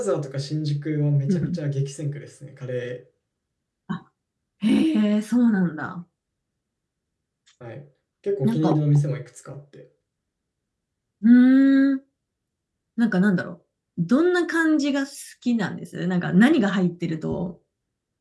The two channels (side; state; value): both; identical; correlation 1.00